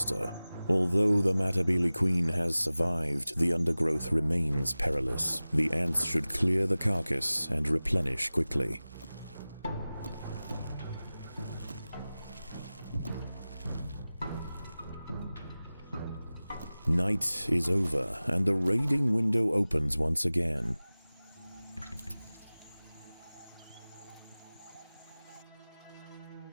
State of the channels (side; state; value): both; inverted; correlation -0.97